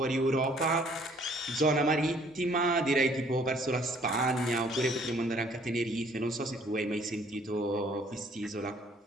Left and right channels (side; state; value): both; normal; correlation 0.60